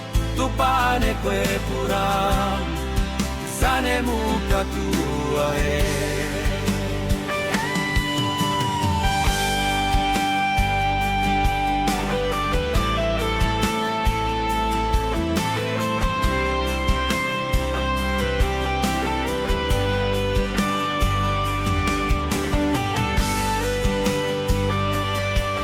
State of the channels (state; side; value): identical; both; correlation 1.00